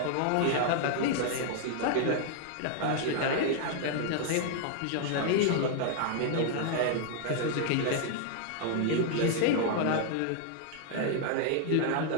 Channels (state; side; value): different; both; correlation 0.00